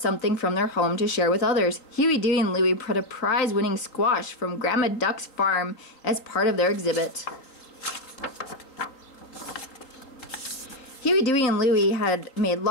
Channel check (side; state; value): right; late; 3.7 ms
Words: from their home to share with others. Huey, Dewey, and Louie brought a prize-winning squash from Grandma Duck's farm as part of their exhibit. Huey, Dewey, and Louie had made